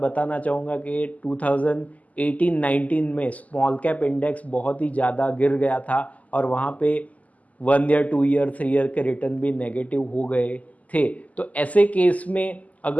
चाहूँगा कि 2018-19 में स्मॉल कैप इंडेक्स बहुत ही ज़्यादा गिर गया था और वहाँ पे 1 ईयर 2 ईयर 3 ईयर के रिटर्न भी नेगेटिव हो गए थे। तो ऐसे केस में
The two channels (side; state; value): right; late; 0.074 ms